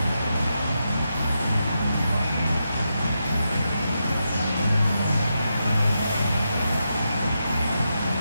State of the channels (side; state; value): both; inverted; correlation -0.86